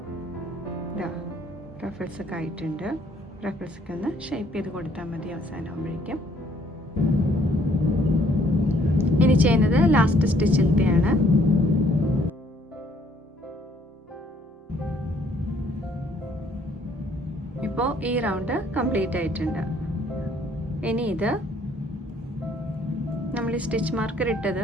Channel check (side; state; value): both; normal; correlation 0.63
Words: റഫിൾസ് ഒക്കെ ആയിട്ടുണ്ട്. റഫിൾസ് ഒക്കെ ഒന്ന് ഷേപ്പ് ചെയ്ത് കൊടുത്താൽ മതി അവസാനമാകുമ്പോഴേക്കും. ഇനി ചെയ്യുന്നത് ലാസ്റ്റ് സ്റ്റിച്ചിലത്തെയാണ്. ഇപ്പോൾ ഈ റൗണ്ട് കംപ്ലീറ്റ് ആയിട്ടുണ്ട്. ഇനി ഇത് നമ്മൾ ഈ സ്റ്റിച്ച് മാർക്കർ